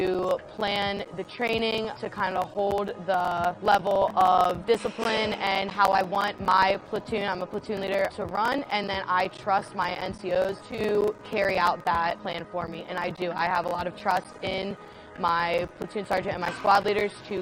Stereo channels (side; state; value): both; identical; correlation 1.00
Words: plan the training, to kind of hold the level of discipline and how I want my platoon, I'm a platoon leader, to run, and then I trust my NCOs to carry out that plan for me, and I do. I have a lot of trust in my platoon sergeant and my squad leaders